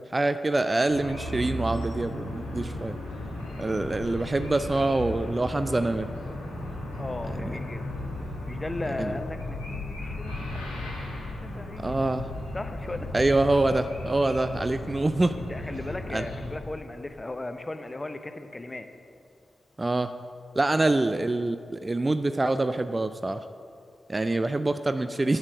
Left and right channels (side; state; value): both; normal; correlation 0.95